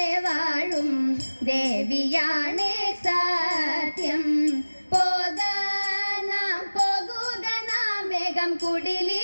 വാഴും ദേവിയാണേ സത്യം പോകുക നാം വേഗം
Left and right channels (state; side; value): inverted; both; correlation -1.00